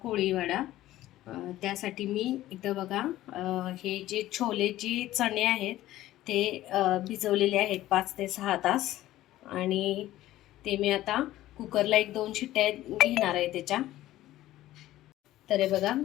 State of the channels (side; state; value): right; quieter; 15.0 dB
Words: वडा. त्यासाठी मी इथं बघा, हे जे छोलेचे चणे आहेत ते भिजवलेले आहेत 5 ते 6 तास, आणि ते मी आता कुकरला 1-2 शिट्ट्या घेणार आहे त्याच्या. तर हे बघा,